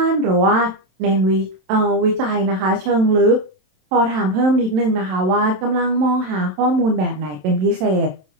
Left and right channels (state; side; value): late; left; 27 ms